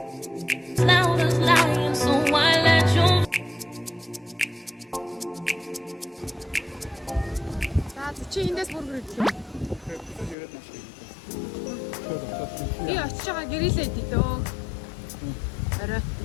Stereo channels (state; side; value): drops out; right; at 10.4 s